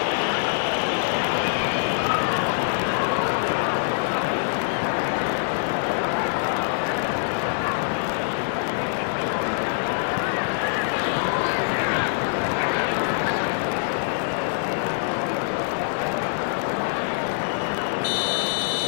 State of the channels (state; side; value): silent; right; digital silence